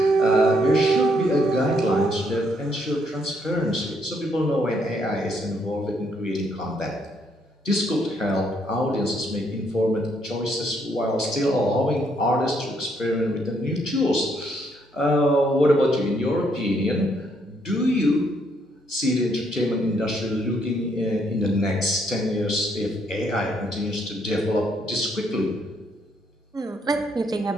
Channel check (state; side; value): normal; both; correlation 0.72